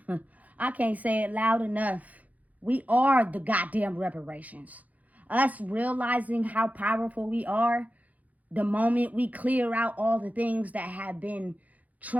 I can't say it loud enough. We are the goddamn reparations. Us realizing how powerful we are, the moment we clear out all the things that have been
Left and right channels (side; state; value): left; late; 0.076 ms